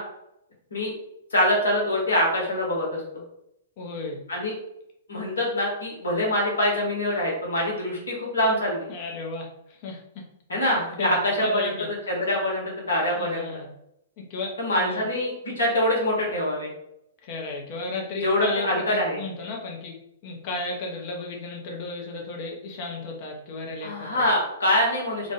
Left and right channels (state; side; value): inverted; both; correlation -0.37